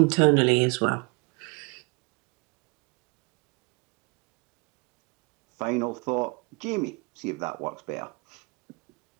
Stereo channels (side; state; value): left; quieter; 30.9 dB